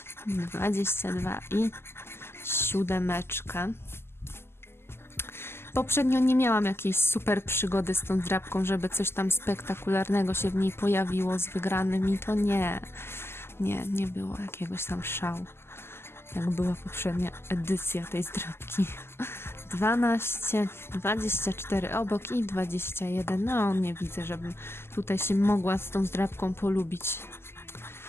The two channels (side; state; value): right; late; 0.12 ms